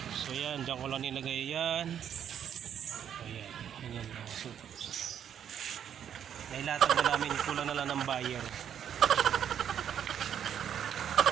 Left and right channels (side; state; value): left; quieter; 9.1 dB